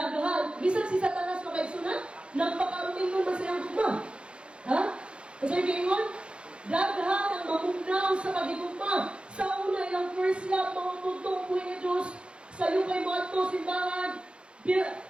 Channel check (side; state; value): left; late; 0.056 ms